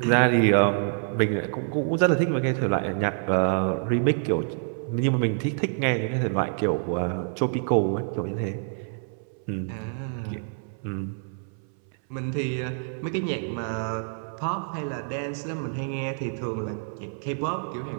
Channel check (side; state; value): left; silent; 60 dB below the other